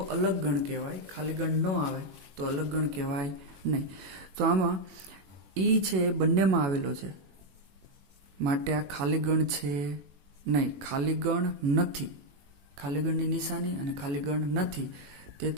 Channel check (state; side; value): late; left; 21 ms